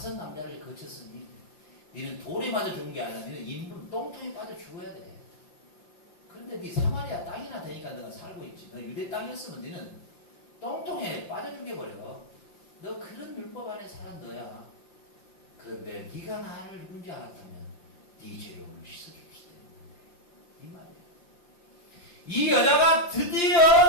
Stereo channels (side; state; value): right; late; 5.8 ms